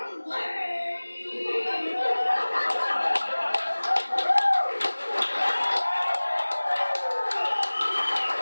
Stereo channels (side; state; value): both; inverted; correlation -1.00